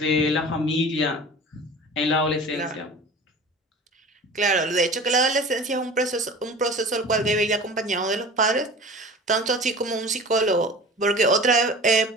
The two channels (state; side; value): normal; both; correlation 0.39